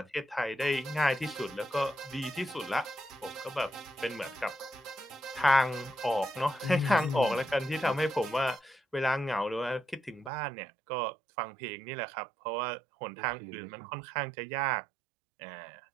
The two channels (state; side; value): drops out; left; at 10.3 s